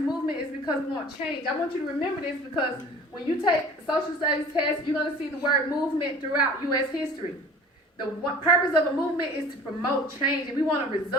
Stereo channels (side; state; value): both; normal; correlation 0.44